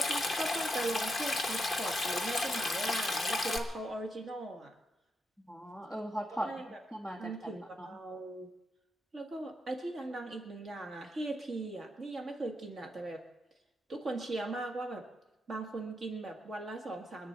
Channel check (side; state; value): both; normal; correlation 0.82